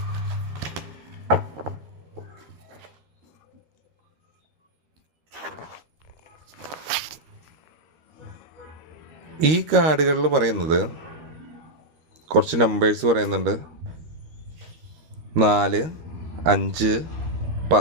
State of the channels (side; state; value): left; late; 13 ms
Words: ഈ കാർഡുകളിൽ പറയുന്നത് കുറച്ച് നമ്പേഴ്സ് പറയുന്നുണ്ട്. 4, 5,